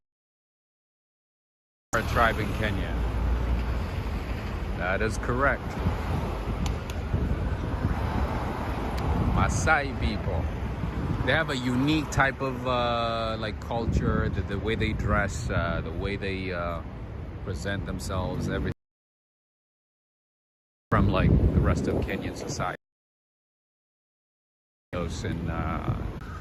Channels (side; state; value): both; identical; correlation 1.00